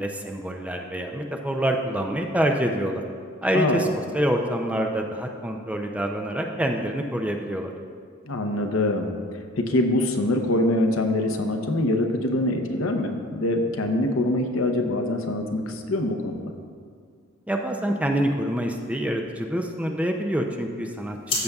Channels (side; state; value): both; normal; correlation 0.54